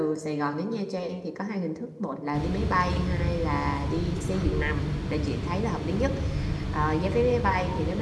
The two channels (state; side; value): identical; both; correlation 1.00